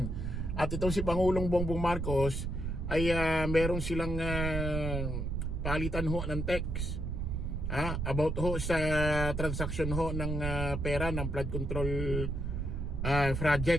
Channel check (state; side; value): noise; right; rumble, 2 dB below the sound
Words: At itong si Pangulong Bongbong Marcos ay meron silang palitan ho ng text about ho sa transaction ho ng pera ng flood control